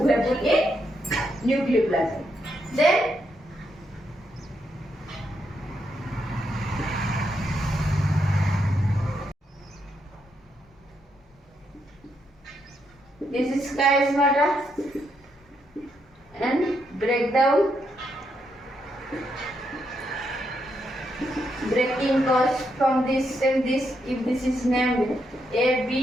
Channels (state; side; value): normal; both; correlation 0.80